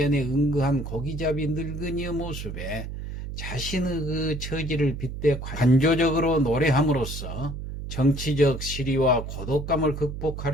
응거한 고기잡이 늙은이의 모습에 자신의 처지를 빗대 관조적으로 노래함으로써 정치적 시리와 고독감을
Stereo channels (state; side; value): noise; right; hum, 7 dB below the sound